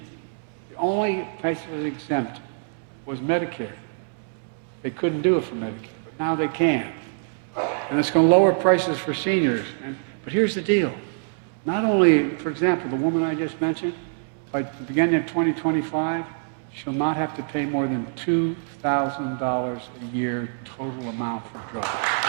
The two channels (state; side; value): silent; left; digital silence